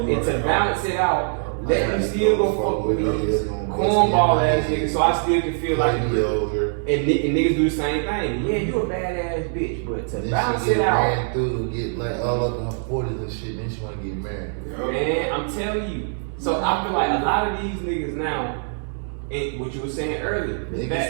up, you and to right. balance it out, let me still go fuck with these them. cornball ass niggas, so I still can feel like, and over. niggas do the same thing. Yeah, you a badass bitch, but to Then balance she it get out, ran through, get like all up in her 40s and shit, then she wanna get married. man, I'm telling you. So I feel like a lot of these niggas now, and what you were saying earlier, the Niggas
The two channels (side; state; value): left; silent; digital silence